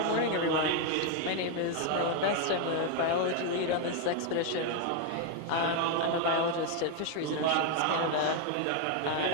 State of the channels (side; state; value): both; different; correlation 0.01